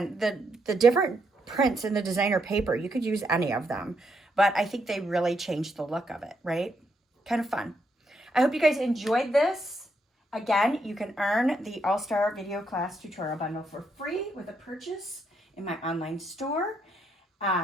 the different prints in the designer paper, you could use any of them. But I think they really changed the look of it, right? Kind of fun. I hope you guys enjoyed this. Again, you can earn the All-Star Video Class Tutorial Bundle for free with a purchase in my online store.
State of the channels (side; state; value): both; normal; correlation 0.77